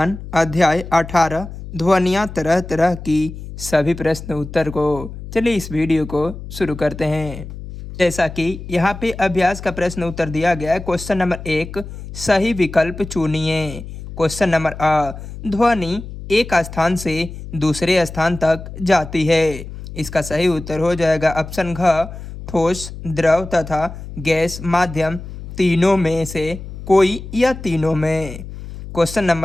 अध्याय 18 ध्वनियाँ तरह तरह की सभी प्रश्न उत्तर को। चलिए इस वीडियो को शुरू करते हैं। जैसा कि यहाँ पे अभ्यास का प्रश्न उत्तर दिया गया है। क्वेश्चन नंबर 1, सही विकल्प चुनिए। क्वेश्चन नंबर अ, ध्वनि एक स्थान से दूसरे स्थान तक जाती है। इसका सही उत्तर हो जाएगा ऑप्शन घ, ठोस, द्रव तथा गैस माध्यम तीनों में से कोई या तीनों में। क्वेश्चन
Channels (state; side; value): noise; left; hum, 11 dB below the sound